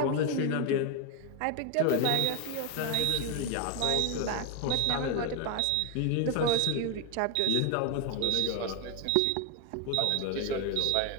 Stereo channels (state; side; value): different; both; correlation 0.01